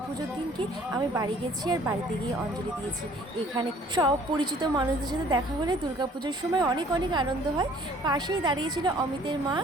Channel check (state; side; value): normal; both; correlation 0.55